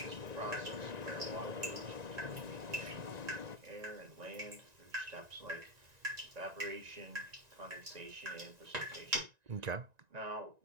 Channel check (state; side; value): late; left; 1.9 ms